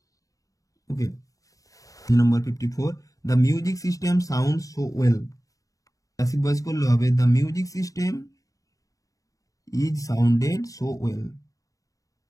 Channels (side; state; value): right; late; 0.16 ms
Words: Okay. Number 54. The music system sounds so well. Passive voice করলে হবে the music system is sounded so well.